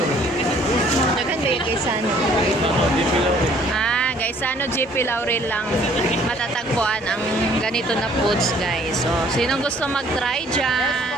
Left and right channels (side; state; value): both; normal; correlation 0.59